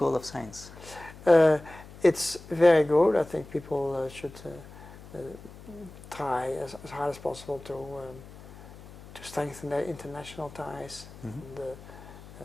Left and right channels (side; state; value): left; noise; hum, 18 dB below the sound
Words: of Science? It's very good. I think people should try as hard as possible to strengthen their international ties. Mm-hmm. And,